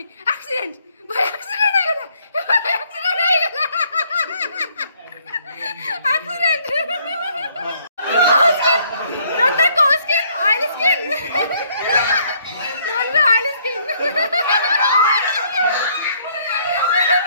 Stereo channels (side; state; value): both; inverted; correlation -0.66